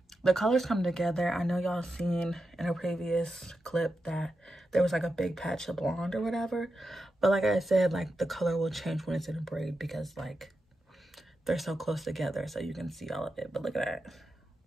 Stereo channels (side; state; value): both; normal; correlation 0.89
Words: the colors come together. I know y'all seen in a previous clip that there was like a big patch of blonde or whatever, but like I said, like the color will change when it's in a braid because like they're so close together, so you can see all of it. But look at that.